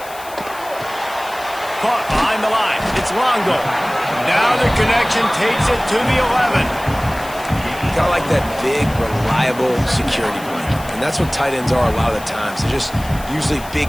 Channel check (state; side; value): noise; left; hiss, 17 dB below the sound